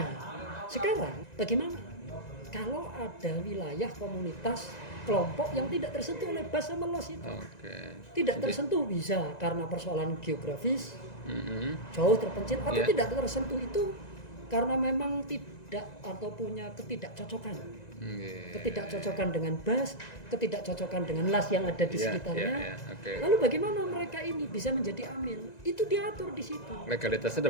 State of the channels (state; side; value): late; right; 1.9 ms